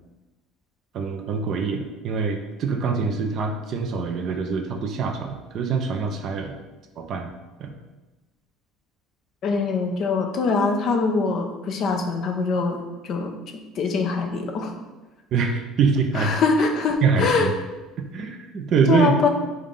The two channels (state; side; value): normal; both; correlation 0.48